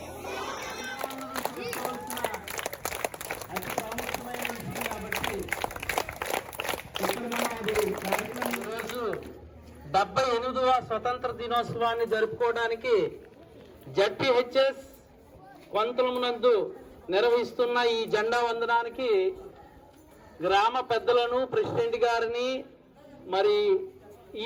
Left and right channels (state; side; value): identical; both; correlation 1.00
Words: అతి ప్రాముఖ్యమైన విషయం కాబట్టి ఈరోజు 78వ స్వతంత్ర దినోత్సవాన్ని జరుపుకోవడానికి జడ్పీహెచ్ఎస్ కొంతలమునందు నిర్వహిస్తున్న ఈ జెండా వందనానికి గ్రామ పెద్దలను, ప్రెసిడెంట్ గారిని, మరి